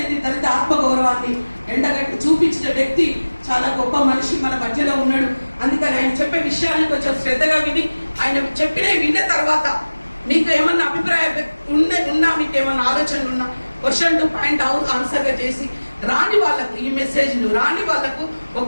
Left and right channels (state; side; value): inverted; both; correlation -1.00